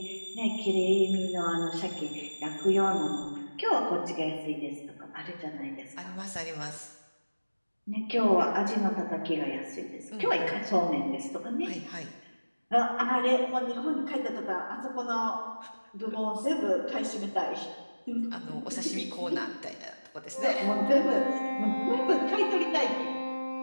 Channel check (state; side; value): inverted; both; correlation -1.00